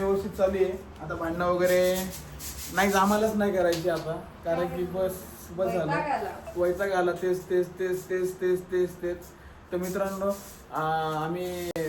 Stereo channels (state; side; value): identical; both; correlation 1.00